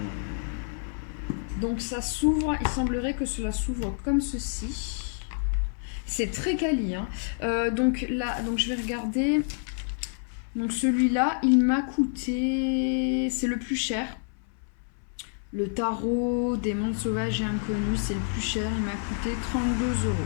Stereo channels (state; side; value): silent; right; 59 dB below the other